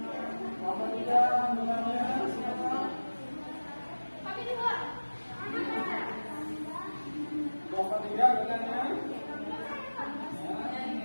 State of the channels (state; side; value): inverted; both; correlation -1.00